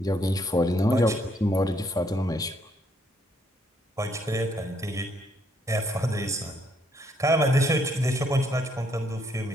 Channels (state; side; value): normal; both; correlation 0.71